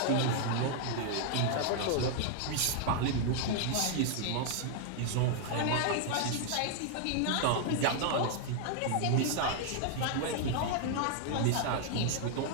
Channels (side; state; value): both; different; correlation 0.00